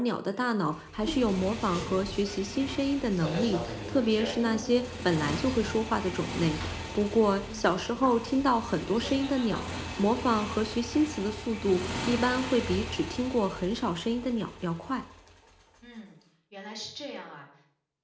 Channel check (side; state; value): both; identical; correlation 1.00